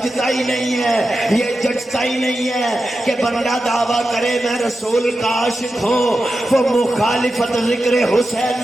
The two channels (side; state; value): both; normal; correlation 0.91